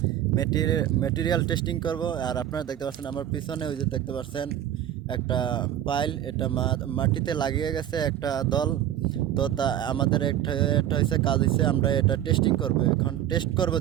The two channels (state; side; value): quieter; left; 11.5 dB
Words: মেটেরিয়াল টেস্টিং করব। আর আপনারা দেখতে পাচ্ছেন আমার পিছনে ওই যে দেখতে পাচ্ছেন একটা পাইল, এটা মাটিতে লাগিয়ে গেছে একটা দল। তো তা আমাদের একটা একটা হয়েছে কাজ হয়েছে, আমরা এটা টেস্টিং করব। এখন টেস্ট করব